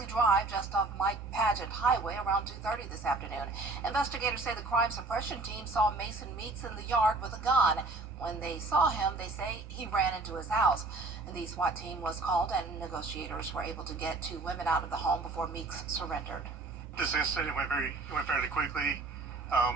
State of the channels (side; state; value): left; quieter; 3.5 dB